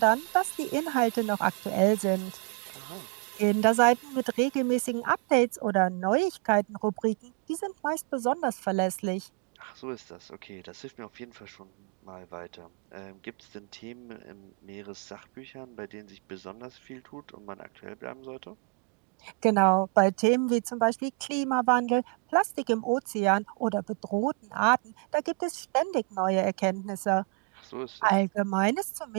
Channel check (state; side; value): quieter; left; 33.3 dB